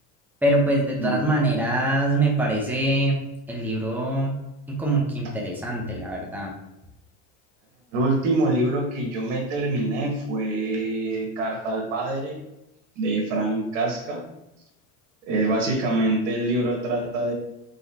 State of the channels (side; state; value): both; normal; correlation 0.21